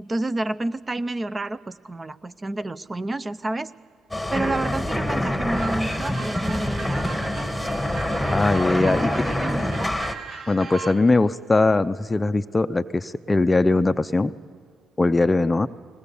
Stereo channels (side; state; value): both; normal; correlation 0.96